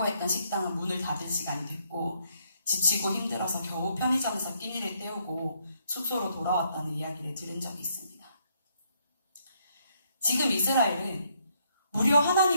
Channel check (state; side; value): inverted; both; correlation -0.72